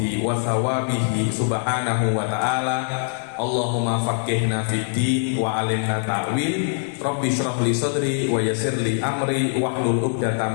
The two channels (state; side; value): silent; right; digital silence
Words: wa thawabihi subhanahu wa ta'ala. Allahumma faqihna fid din wa alimna ta'wil. Rabbi shrah li sadri wa yassir li amri wahlul